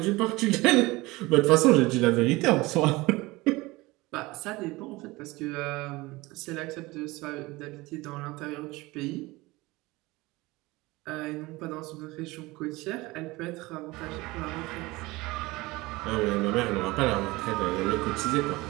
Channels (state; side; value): quieter; left; 21.4 dB